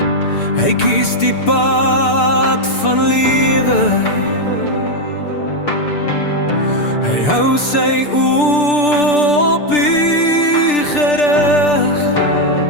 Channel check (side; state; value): right; late; 6.8 ms